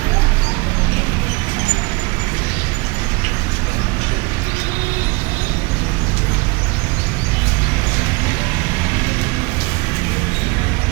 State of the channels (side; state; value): left; quieter; 27.2 dB